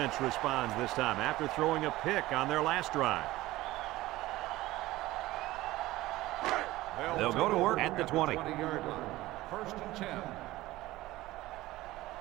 responds this time after throwing a pick on their last drive. They'll go to work at the 20. 20-yard line. First and 10.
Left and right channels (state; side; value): quieter; left; 17.5 dB